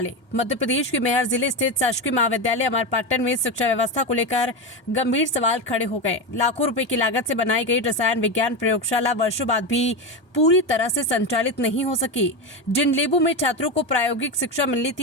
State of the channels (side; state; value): right; late; 1.2 ms